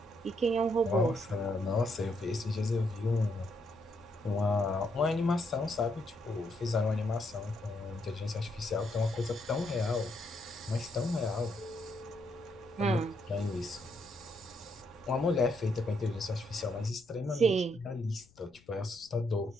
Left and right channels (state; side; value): noise; left; rumble, 28 dB below the sound